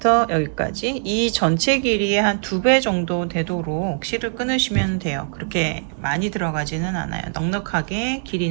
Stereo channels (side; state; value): left; silent; digital silence